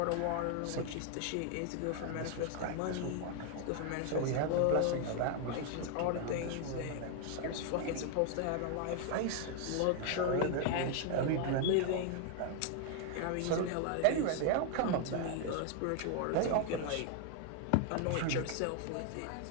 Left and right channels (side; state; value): both; different; correlation 0.00